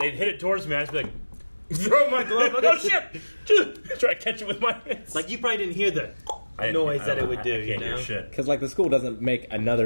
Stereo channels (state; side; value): inverted; both; correlation -1.00